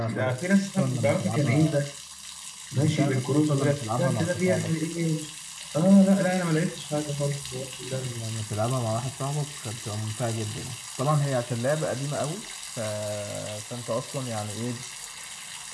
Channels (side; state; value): both; identical; correlation 1.00